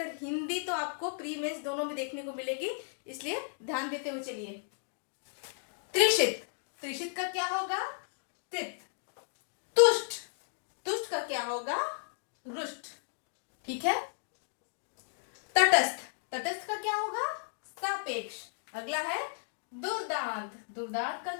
हिंदी तो आपको प्री मेंस दोनों में देखने को मिलेगी, इसलिए ध्यान देते हुए चलिए। त्रिशित, त्रिशित का क्या होगा? तृप्त। तुष्ट, तुष्ट का क्या होगा? रुष्ट। ठीक है। तटस्थ, तटस्थ का क्या होगा? सापेक्ष। अगला है दुर्दांत, दुर्दांत का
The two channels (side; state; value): right; silent; digital silence